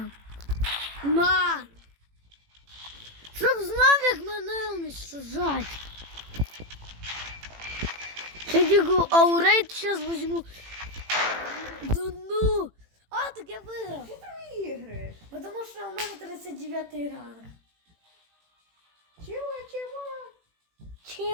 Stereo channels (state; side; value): late; left; 18 ms